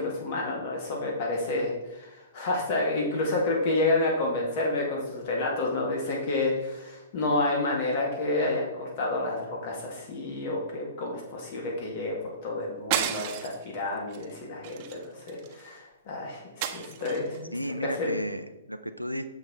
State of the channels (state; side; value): inverted; both; correlation -0.38